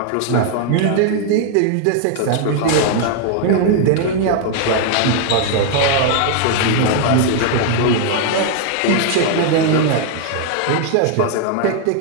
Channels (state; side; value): different; both; correlation 0.00